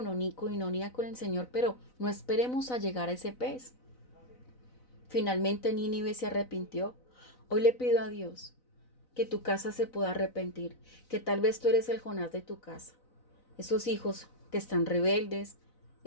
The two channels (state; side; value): late; right; 4.0 ms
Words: con el Señor. Pero no esperemos a llegar a ese pez. Finalmente Nínive se arrepintió. Hoy le pido a Dios que tu casa se pueda arrepentir, que tal vez tú eres el Jonás de tu casa. Esos hijos que están rebeldes,